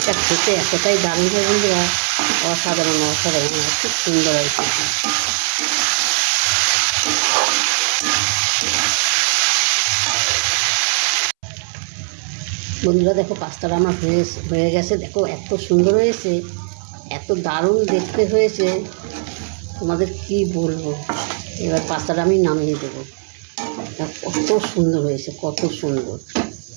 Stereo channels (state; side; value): silent; left; 67 dB below the other